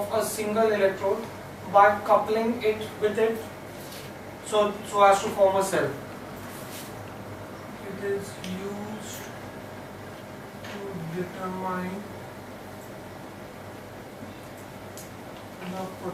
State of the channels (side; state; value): both; identical; correlation 1.00